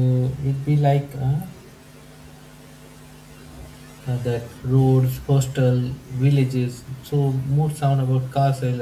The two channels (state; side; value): identical; both; correlation 1.00